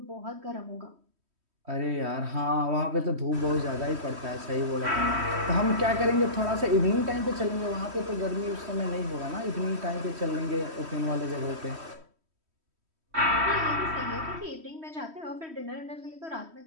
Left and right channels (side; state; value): left; late; 3.1 ms